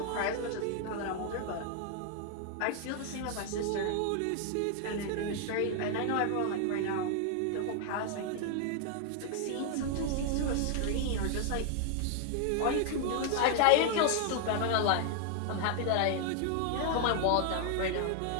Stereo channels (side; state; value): both; different; correlation 0.00